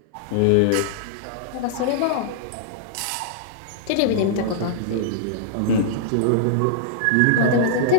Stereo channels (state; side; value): different; both; correlation -0.02